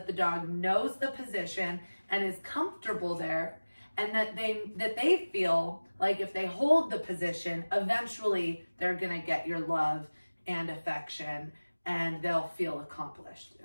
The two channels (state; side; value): inverted; both; correlation -1.00